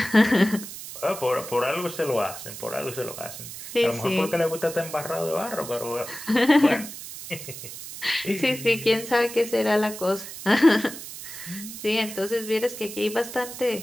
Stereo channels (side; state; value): right; noise; hiss, 11 dB below the sound